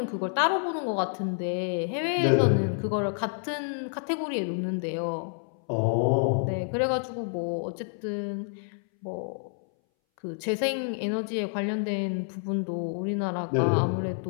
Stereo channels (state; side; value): silent; right; 59 dB below the other